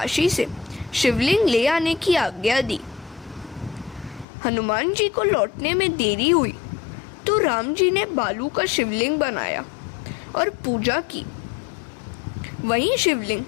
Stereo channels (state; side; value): drops out; right; at 4.2 s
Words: से शिवलिंग ले आने की आज्ञा दी। हनुमान जी को लौटने में देरी हुई तो राम जी ने बालू का शिवलिंग बनाया और पूजा की। वही शिवलिंग